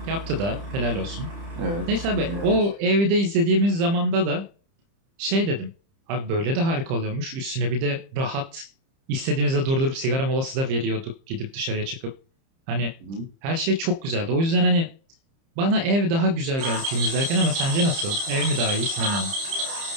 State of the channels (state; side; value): late; left; 30 ms